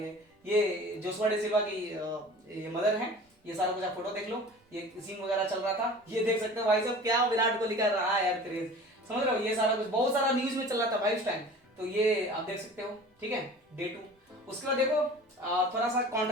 ये जोशुआ डी सिल्वा की ये मदर है। ये सारा कुछ आप फोटो देख लो, ये सीन वगैरह चल रहा था, ये देख सकते हो भाई साहब क्या विराट कोहली का रहा है यार क्रेज, समझ रहे हो। ये सारा कुछ बहुत सारा न्यूज में चल रहा था भाई उस टाइम, तो ये आप देख सकते हो, ठीक है, डे 2। उसके बाद देखो थोड़ा सा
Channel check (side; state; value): both; normal; correlation 0.41